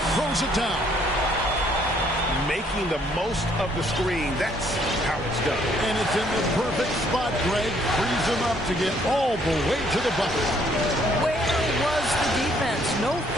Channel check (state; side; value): normal; both; correlation 0.65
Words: throws it down. Making the most of the screen. That's how it's done. And it's in the perfect spot. Greg frees him up to get all the way to the bucket. Where was the defense? No